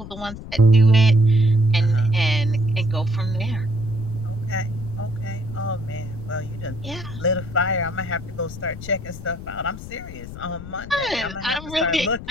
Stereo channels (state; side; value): noise; left; rumble, 12 dB below the sound